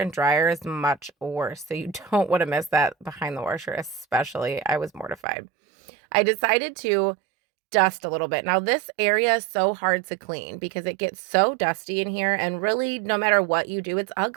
dryer is much worse, so you don't want to miss that behind the washer especially. I was mortified. I decided to dust a little bit. Now this area is so hard to clean because it gets so dusty in here, and really no matter what you do, it's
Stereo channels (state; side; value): drops out; left; at 5.2 s